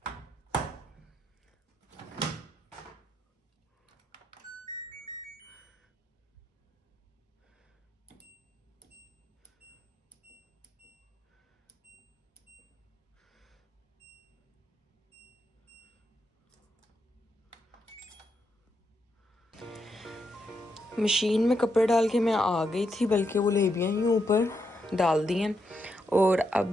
मशीन में कपड़े डाल के मैं आ गई थी, बल्कि वो लेबियाँ ही ऊपर डाल दी हैं। और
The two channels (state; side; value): normal; both; correlation 0.81